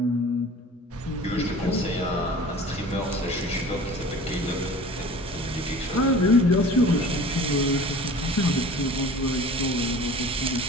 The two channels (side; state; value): both; normal; correlation 0.42